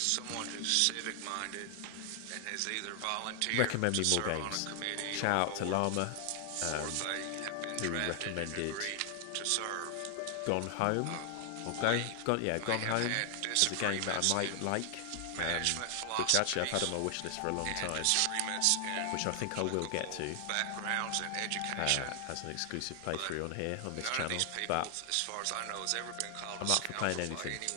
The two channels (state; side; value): different; both; correlation 0.00